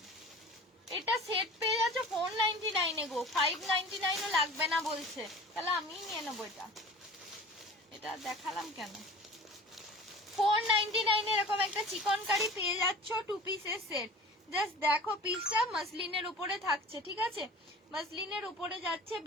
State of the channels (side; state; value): both; normal; correlation 0.40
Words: এটা সেট পেয়ে যাচ্ছ 499 এ গো, 599 ও লাগবে না বলছে, তাহলে আমিই নিয়ে নেবো এটা, এটা দেখালাম কেন। 499 এরকম একটা চিকন কারি পেয়ে যাচ্ছ 2 পিসের সেট। জাস্ট দেখো পিসটা মাসলিনের উপরে থাকছে, ঠিক আছে? মাসলিনের উপরে যাচ্ছে,